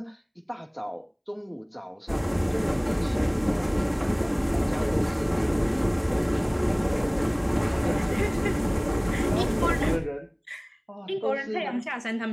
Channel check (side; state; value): both; identical; correlation 1.00